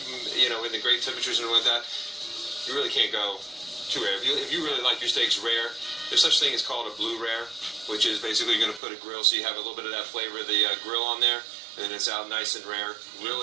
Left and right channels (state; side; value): drops out; left; at 8.8 s